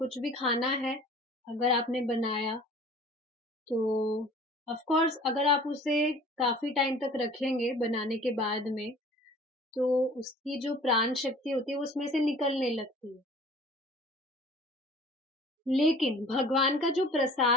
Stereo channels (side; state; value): both; normal; correlation 0.47